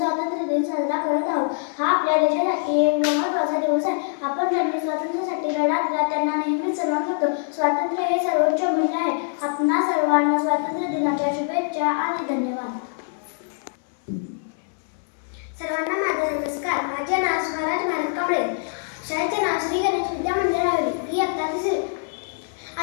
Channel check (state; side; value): silent; right; 63 dB below the other